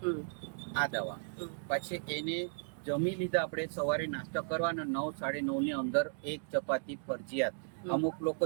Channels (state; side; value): silent; left; digital silence